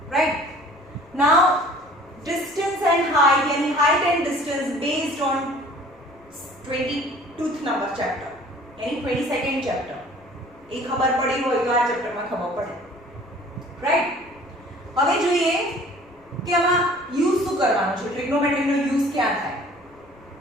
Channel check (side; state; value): left; noise; rumble, 29 dB below the sound